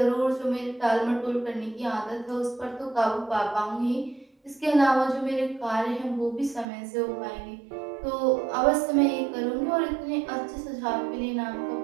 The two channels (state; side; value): drops out; left; at 6.7 s